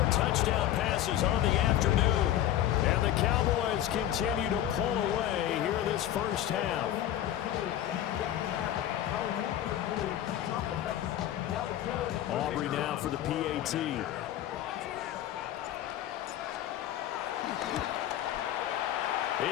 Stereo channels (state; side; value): quieter; right; 12.2 dB